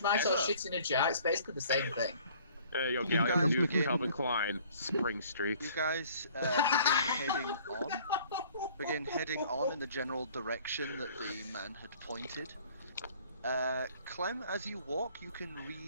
Vegemite, or shit in a jar, it's basically the same thing. Hey, yo, You Gallium, guys new from begin- Calvin Klein. Spring Street. You guys begin heading on in the general direction that the man had pointed. Clem, as you walk, you can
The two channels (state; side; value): inverted; both; correlation -0.55